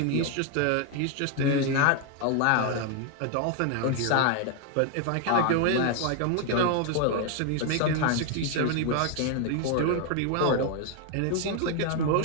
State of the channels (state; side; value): different; both; correlation 0.01